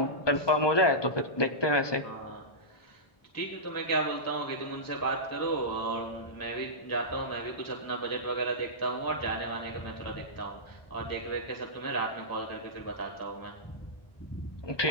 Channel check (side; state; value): right; late; 1.2 ms